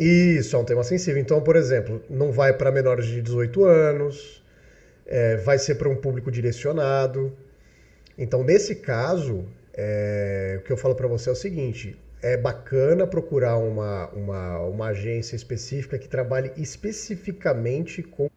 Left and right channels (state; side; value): identical; both; correlation 1.00